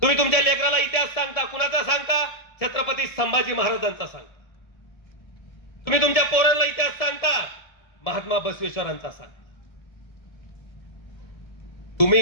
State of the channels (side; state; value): right; late; 1.7 ms